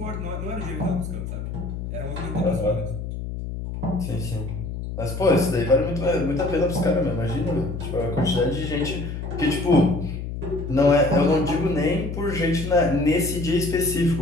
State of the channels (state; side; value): noise; left; hum, 6 dB below the sound